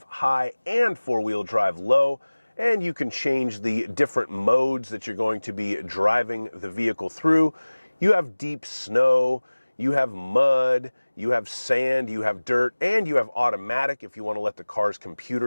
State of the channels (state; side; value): inverted; both; correlation -1.00